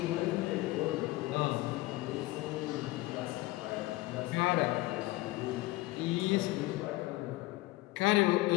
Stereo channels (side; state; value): right; quieter; 19.1 dB